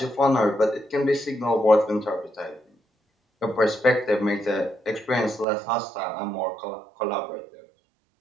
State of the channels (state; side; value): drops out; left; at 5.5 s